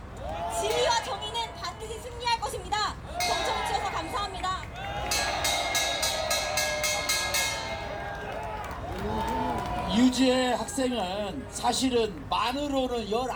진리와 정의는 반드시 승리할 것입니다. 경청해 주셔서 감사합니다. 유지의 학생은 사실은 만으로는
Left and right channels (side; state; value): both; identical; correlation 1.00